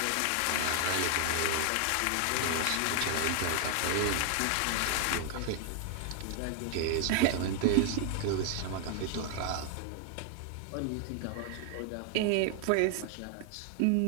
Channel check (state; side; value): different; both; correlation 0.00